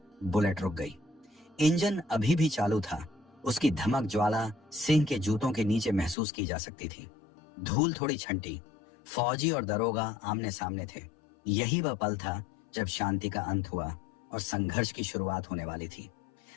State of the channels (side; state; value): right; drops out; at 6.2 s